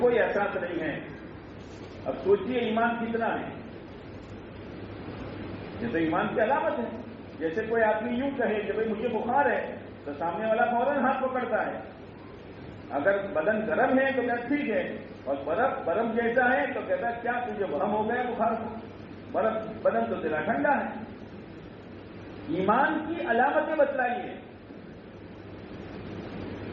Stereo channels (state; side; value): identical; both; correlation 1.00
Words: احساس نہیں ہے. اب سوچئے ایمان کتنا ہے. یہ تو ایمان کی علامت ہے. جیسے کوئی آدمی یوں کہے کہ بھائی مجھے بخار ہے تو سامنے والا فوراً ہاتھ پکڑتا ہے. اگر بدن گرم ہے تو کہتا ٹھیک ہے، اور برف جیسا ہے تو کہتا ہے کیا تجھے برہم ہو گیا بخار کو، بدن تو تیرا ٹھنڈا ہے. ایمان کی علامتیں بتلائیے.